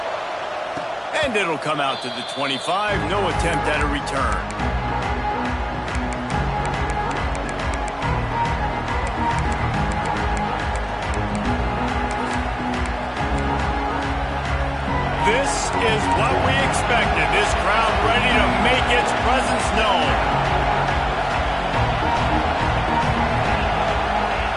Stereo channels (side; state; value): both; identical; correlation 1.00